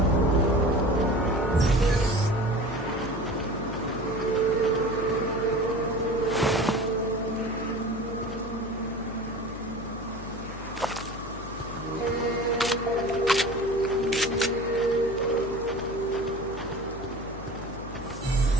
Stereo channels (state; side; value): noise; left; hum, 12 dB below the sound